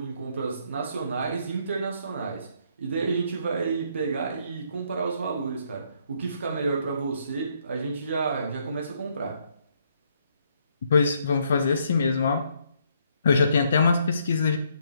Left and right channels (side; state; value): both; inverted; correlation -0.71